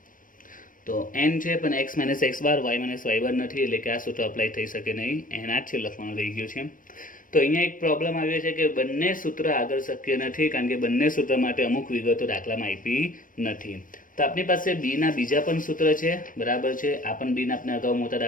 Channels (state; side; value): late; right; 0.39 ms